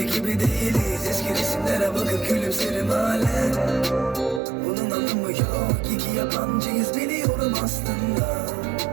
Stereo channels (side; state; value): left; drops out; at 4.4 s